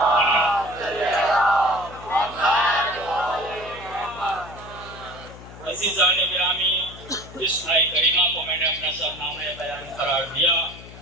عزیزان گرامی، جس آئے کریمہ کو میں نے اپنا سرنامہ بیان قرار دیا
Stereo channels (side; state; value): left; noise; hum, 17 dB below the sound